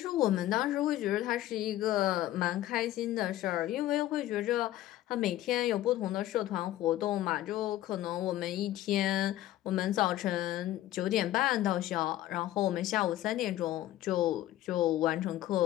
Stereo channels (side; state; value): right; quieter; 14.3 dB